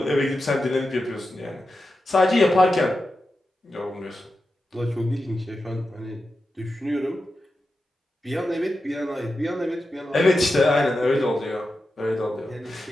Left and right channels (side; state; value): both; normal; correlation 0.90